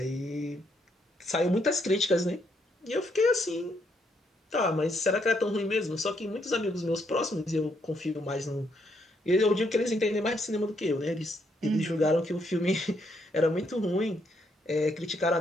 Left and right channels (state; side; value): normal; both; correlation 0.74